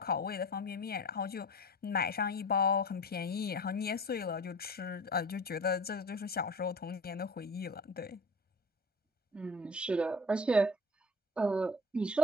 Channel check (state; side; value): normal; both; correlation 0.38